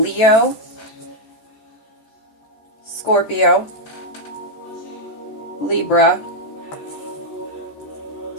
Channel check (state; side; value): late; right; 14 ms